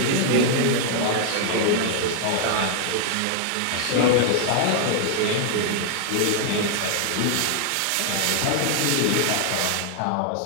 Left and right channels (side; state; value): both; different; correlation 0.00